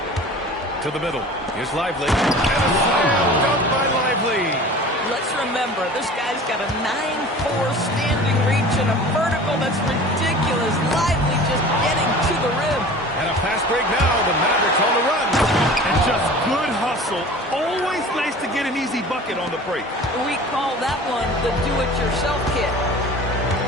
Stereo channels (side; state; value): both; normal; correlation 0.41